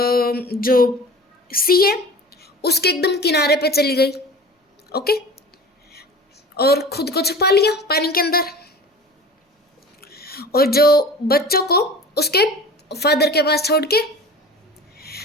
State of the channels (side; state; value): both; normal; correlation 0.38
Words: जो सी है उसके एकदम किनारे पे चली गई. ओके. और खुद को छुपा लिया पानी के अंदर, और जो बच्चों को उसके फादर के पास छोड़ के,